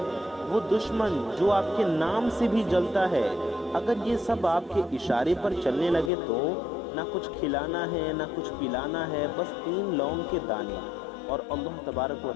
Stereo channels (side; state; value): right; drops out; at 6.1 s